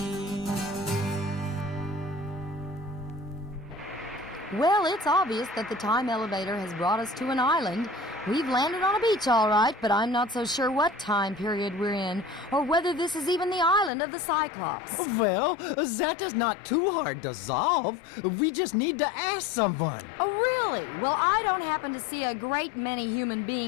Well, it's obvious that the time elevator has brought us to an island. We've landed on a beach, all right, but I'm not so sure what time period we're in, or whether this is even the island of the Cyclops. Well, that is not too hard to solve. We just need to ask someone. Oh, really? Well, I don't happen to see a great many human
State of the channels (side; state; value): right; drops out; at 13.9 s